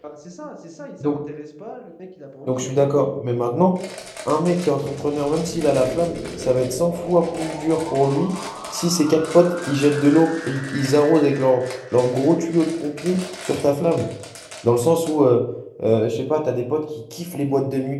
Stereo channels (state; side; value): identical; both; correlation 1.00